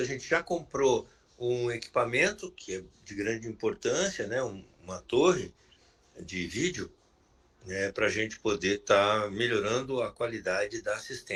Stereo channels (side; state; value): both; identical; correlation 1.00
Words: a gente já comprou um equipamento que é de grande importância, né? Uma torre de vídeo, né? Para a gente poder estar melhorando a qualidade da